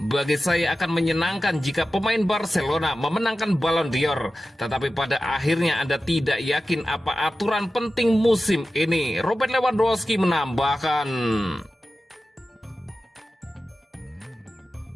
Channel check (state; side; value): normal; both; correlation 0.93